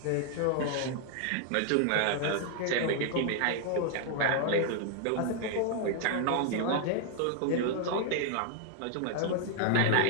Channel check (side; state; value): both; different; correlation 0.00